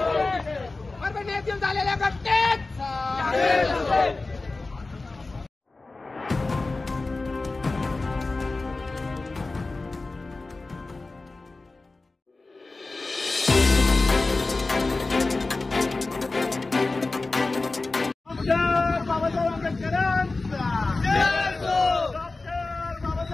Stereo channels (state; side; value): quieter; right; 3.4 dB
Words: परभणी येथील झालेल्या घटनेचा बाबासाहेब आंबेडकरांचा डॉक्टर